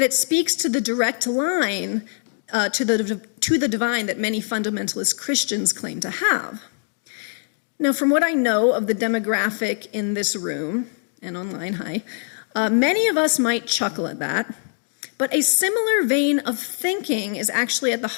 it speaks to the direct line to the divine that many fundamentalist Christians claim to have. Now, from what I know of the demographic in this room and online, many of us might chuckle at that, but a similar vein of thinking is actually at the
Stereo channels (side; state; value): right; silent; 59 dB below the other